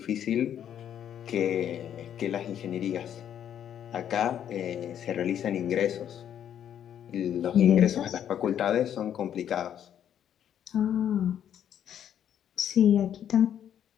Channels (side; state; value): right; quieter; 9.7 dB